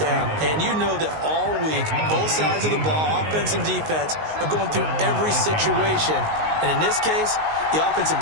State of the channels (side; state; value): left; late; 19 ms